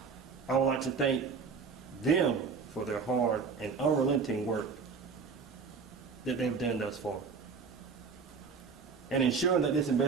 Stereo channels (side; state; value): left; quieter; 5.3 dB